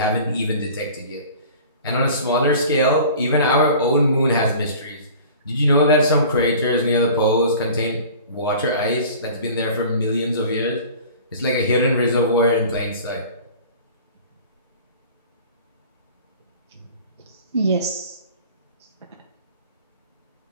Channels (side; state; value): both; inverted; correlation -0.43